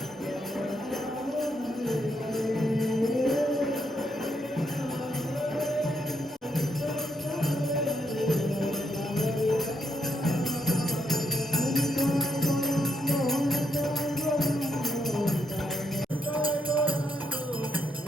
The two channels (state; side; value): normal; both; correlation 0.78